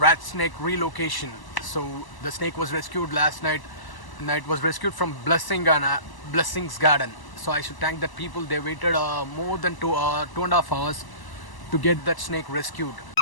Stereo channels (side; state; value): right; late; 1.0 ms